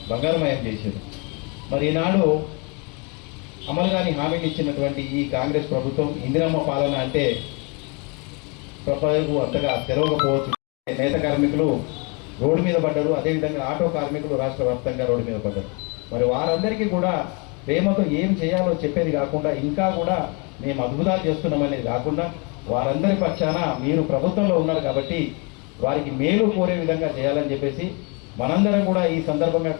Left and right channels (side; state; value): right; quieter; 32.2 dB